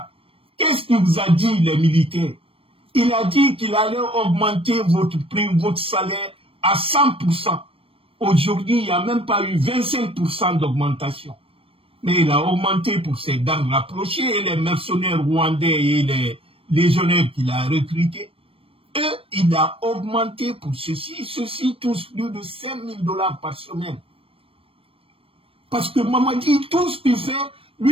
qu'est-ce qu'il vous a dit, les militaires? Il a dit qu'il allait augmenter votre prime, votre salaire à 100%. Aujourd'hui, il n'y a même pas eu 25% d'augmentation. Mais il a augmenté pour ses gardes rapprochés et les mercenaires rwandais et les légionnaires qu'il a recrutés. Eux, il a augmenté pour ceci. Ceux-ci touchent plus de 5 000 $ par semaine. Parce que Mamadi, tout ce qu'il fait,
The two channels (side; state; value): left; late; 0.27 ms